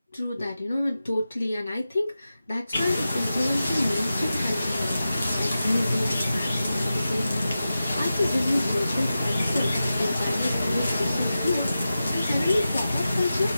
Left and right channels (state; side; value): inverted; both; correlation -0.93